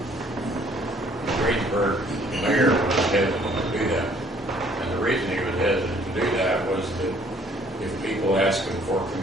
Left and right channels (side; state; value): both; normal; correlation 0.60